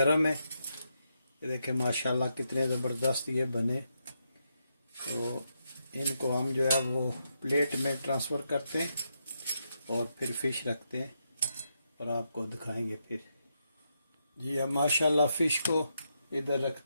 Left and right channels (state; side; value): inverted; both; correlation -0.81